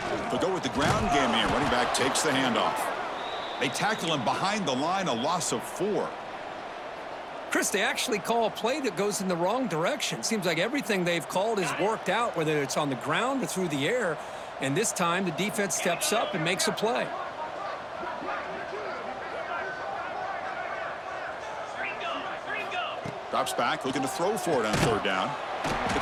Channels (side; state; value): both; identical; correlation 1.00